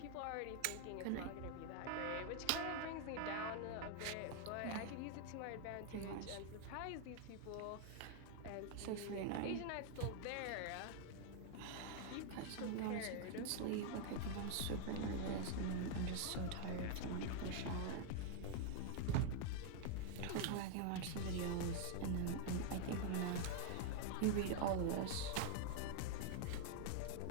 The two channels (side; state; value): both; different; correlation 0.00